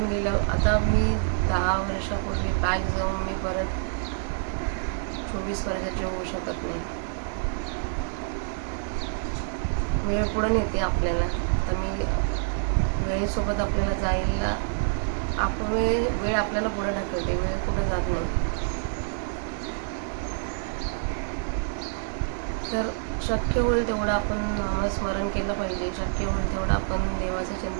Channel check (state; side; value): silent; left; 58 dB below the other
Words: गेलं. आता मी 10 वर्षापूर्वी बॅक जाऊन मी परत 24 वर्षाची होऊ शकत नाही. वेळ पुढे नेते आपल्याला. तर मी वेळेसोबत आपल्याला जायला वेळ आपल्याला पुढे ढकलते, वेळ पुढे जात नाही. तर शक्य होईल तेवढं आपण नामस्मरण केलं पाहिजे, शक्य होईल तेवढं आपण देवाचं